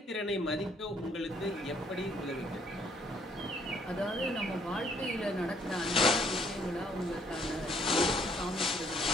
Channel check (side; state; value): both; normal; correlation 0.65